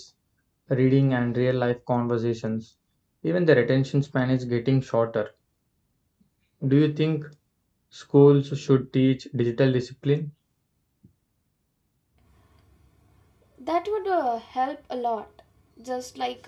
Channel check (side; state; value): both; identical; correlation 1.00